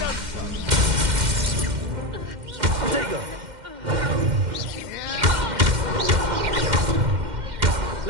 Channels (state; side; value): late; left; 2.1 ms